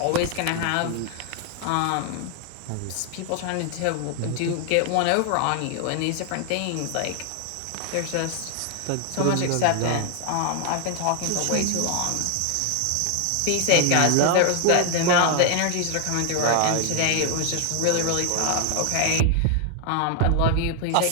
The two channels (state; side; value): different; both; correlation 0.00